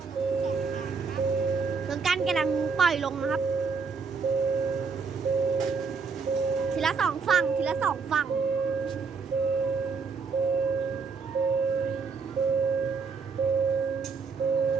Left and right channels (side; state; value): left; quieter; 5.1 dB